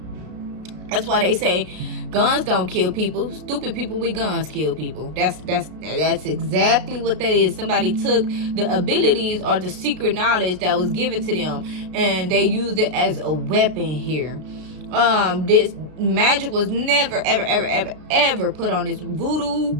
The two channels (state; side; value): late; left; 33 ms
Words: That's why they say guns don't kill people. Stupid people with guns kill people. That's exactly what that is. Somebody took the abilities or the secret knowledge that was given to them, and they used it as a weapon here. This magic was never ever put on this. Voodoo,